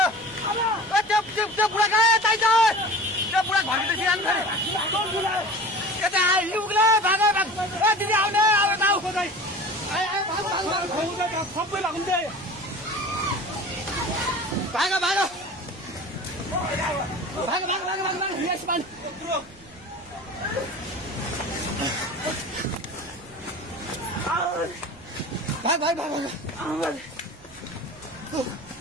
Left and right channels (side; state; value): right; noise; rumble, 24 dB below the sound